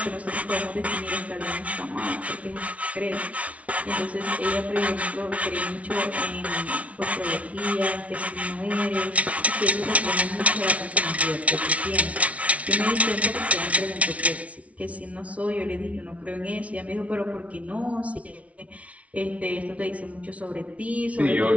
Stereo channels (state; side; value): late; left; 0.065 ms